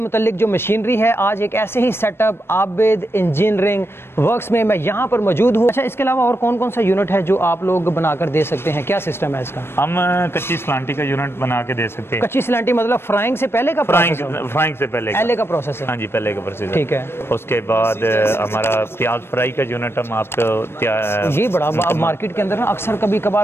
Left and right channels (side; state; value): right; late; 0.12 ms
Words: जो मशीनरी है, आज एक ऐसे ही सेटअप आबिद इंजीनियरिंग वर्क्स में मैं यहाँ पर मौजूद हूँ। अच्छा, इसके अलावा और कौन कौन सा यूनिट है जो आप लोग बनाकर दे सकते हैं? क्या सिस्टम है इसका? हम कच्ची सलांटी का यूनिट बना के दे सकते हैं। कच्ची सलांटी मतलब फ्राइंग से पहले का प्रोसेस है? फ्राइंग से पहले का प्रोसेस है। हाँ जी, पहले का प्रोसेस। ठीक है। उसके बाद हमारा प्याज फ्राई का यूनिट हम आपको ये बड़ा मार्केट के अंदर ना अक्सर कभी